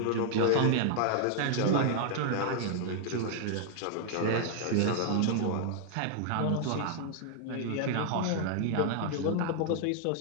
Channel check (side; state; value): both; different; correlation -0.01